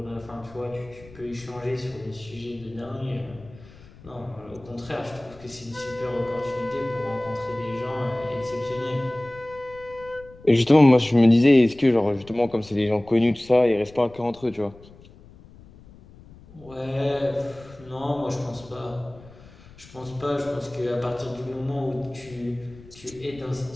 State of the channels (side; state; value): left; noise; rumble, 22 dB below the sound